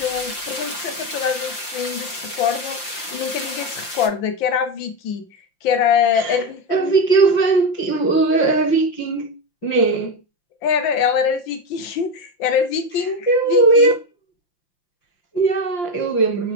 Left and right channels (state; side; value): late; right; 5.8 ms